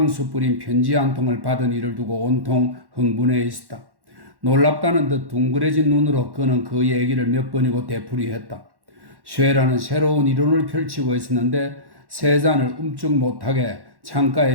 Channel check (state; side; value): late; left; 1.1 ms